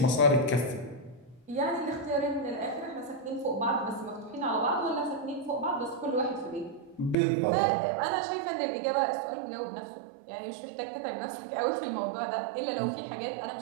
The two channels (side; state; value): left; drops out; at 7.2 s